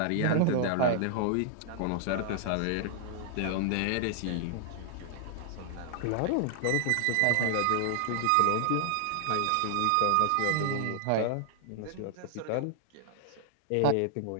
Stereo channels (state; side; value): different; both; correlation 0.00